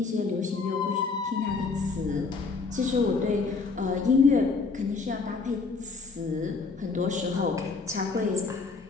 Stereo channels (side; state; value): right; quieter; 4.4 dB